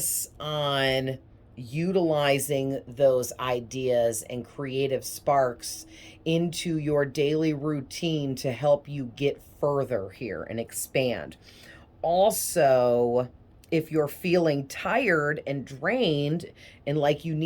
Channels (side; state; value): both; identical; correlation 1.00